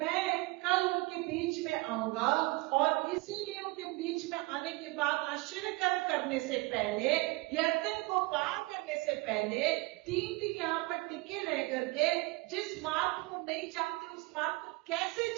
कल उनके बीच में आऊंगा, और इसीलिए उनके बीच में आने के बाद आश्चर्य करने से पहले, यरदन को पार करने से पहले 3 दिन यहाँ पर टिके रह करके जिस मार्ग को नहीं जानते उस मार्ग को कैसे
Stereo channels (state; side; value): quieter; left; 23.9 dB